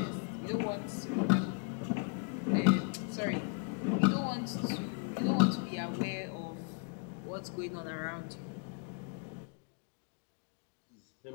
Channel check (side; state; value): right; quieter; 35.9 dB